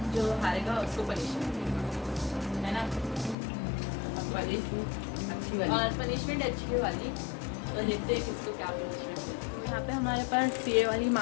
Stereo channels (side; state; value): right; drops out; at 3.4 s